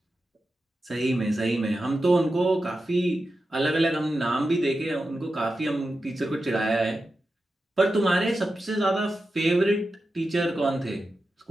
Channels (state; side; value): normal; both; correlation 0.91